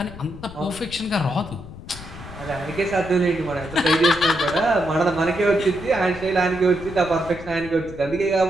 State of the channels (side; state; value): left; noise; rumble, 15 dB below the sound